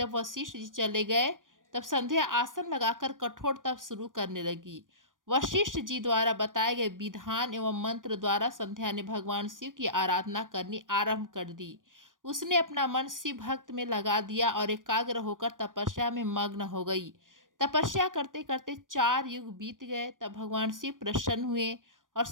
वशिष्ठ जी चले गए तब संध्या आसन लगाकर कठोर तप शुरू करने लगी। वशिष्ठ जी द्वारा बताए गए विधान एवं मंत्र द्वारा संध्या ने भगवान शिव की आराधना करनी आरंभ कर दी। उसने अपना मन शिव भक्त में लगा दिया और एकाग्र होकर तपस्या में मग्न हो गई। तपस्या करते करते 4 युग बीत गए। तब भगवान शिव प्रसन्न हुए और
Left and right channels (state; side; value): late; left; 0.89 ms